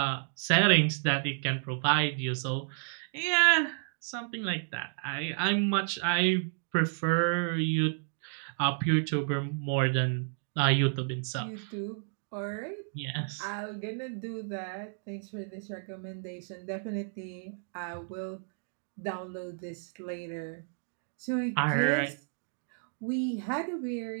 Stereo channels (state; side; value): silent; left; digital silence